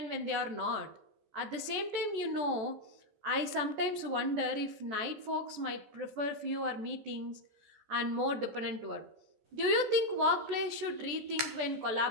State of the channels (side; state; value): left; late; 14 ms